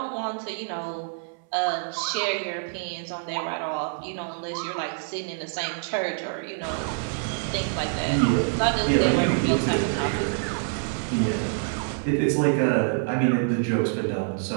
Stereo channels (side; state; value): left; silent; 61 dB below the other